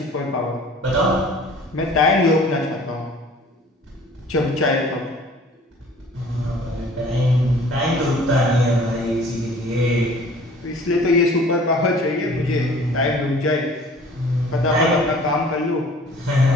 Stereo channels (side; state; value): both; normal; correlation 0.50